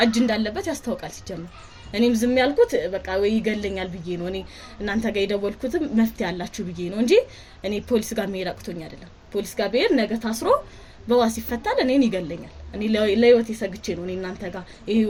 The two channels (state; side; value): identical; both; correlation 1.00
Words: እጅ እንዳለበት ያስታውቃል ሲጀመር እኔም ዝም ያልኩት በቃ ወይ ይገለኛል ብዬ ነው እኔ እናንተ ጋር የደወልኩትም መፍትሄ ያላችሁ ብዬ ነው እንጂ እኔ ፖሊስ ጋር መሄድ አቅቶኝ አይደለም ፖሊስ ጋር ብሄድ ነገ ታስሮ በዋስ ይፈታል እኔን ይገለኛል እኔ ለህይወት የሰግቼ ነው እኔ እናንተ ጋር